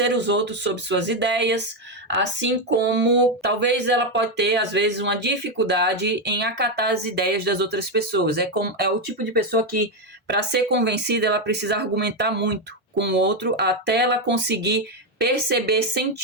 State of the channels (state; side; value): normal; both; correlation 0.07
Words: os outros sobre suas ideias, assim como talvez ela pode ter, às vezes, uma dificuldade em acatar as ideias das outras pessoas. É o tipo de pessoa que, para ser convencida, ela precisa argumentar muito com o outro até ela conseguir perceber